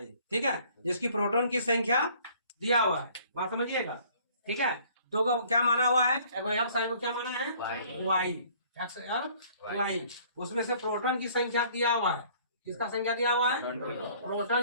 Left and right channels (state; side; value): inverted; both; correlation -0.56